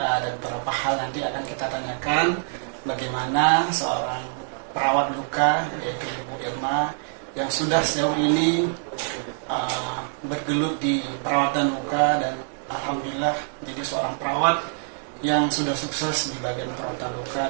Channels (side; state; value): left; silent; digital silence